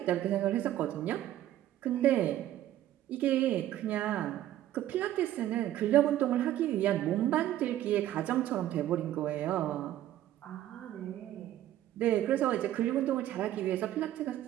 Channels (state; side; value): quieter; left; 13.0 dB